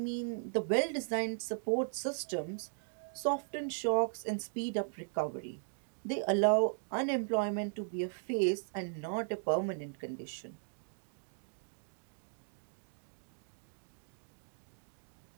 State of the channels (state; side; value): silent; left; digital silence